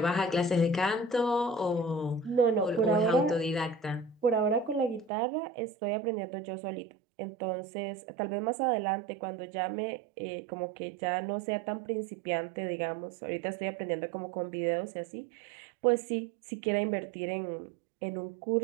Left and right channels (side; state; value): left; drops out; at 5.1 s